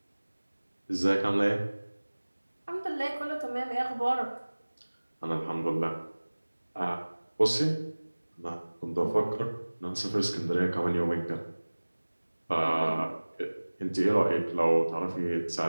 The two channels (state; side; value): inverted; both; correlation -1.00